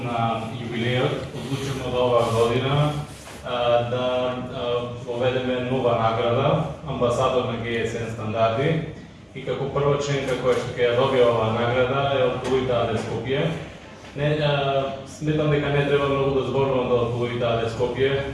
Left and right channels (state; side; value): identical; both; correlation 1.00